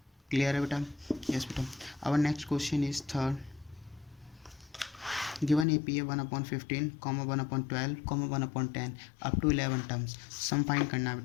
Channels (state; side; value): drops out; right; at 5.7 s